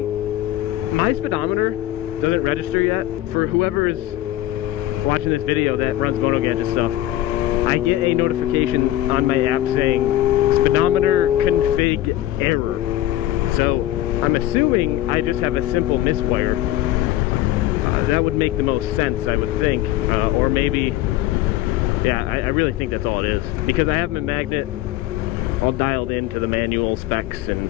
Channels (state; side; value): quieter; right; 14.5 dB